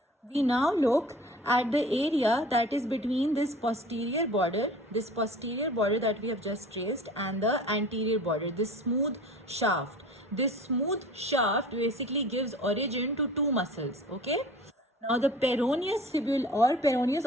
We now look at the area that is between this posterior border that we have just traced, and the anterior border, this smooth shaft. This smooth shaft basically gives origin to two muscles, okay? Now the peroneus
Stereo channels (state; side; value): normal; both; correlation 0.43